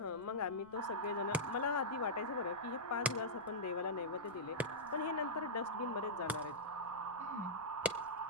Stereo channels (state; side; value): noise; right; rumble, 26 dB below the sound